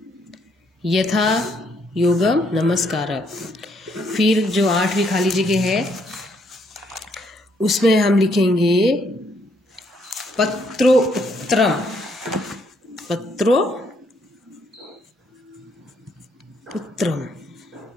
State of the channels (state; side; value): normal; both; correlation 0.71